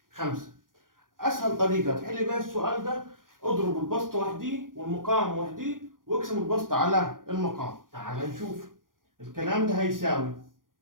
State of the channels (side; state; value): left; late; 0.90 ms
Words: 5. أسهل طريقة تحل بيها السؤال ده، اضرب البسط وحديه والمقام وحديه واقسم البسط على المقام. تعال نشوف. الكلام ده هيساوي